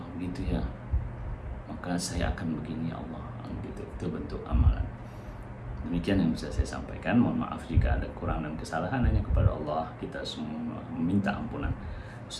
begitu ya, maka saya akan begini ya Allah, gitu. Itu bentuk amalan. Demikian yang bisa saya sampaikan. Mohon maaf jika ada kurang dan kesalahan, hanya kepada Allah kita semua meminta ampunan.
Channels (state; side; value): identical; both; correlation 1.00